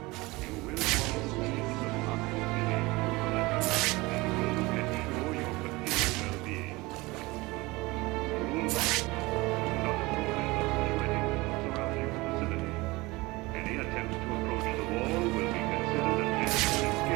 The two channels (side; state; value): left; quieter; 22.3 dB